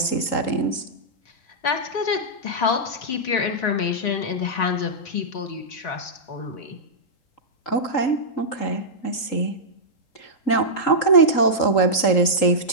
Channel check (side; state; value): right; late; 3.7 ms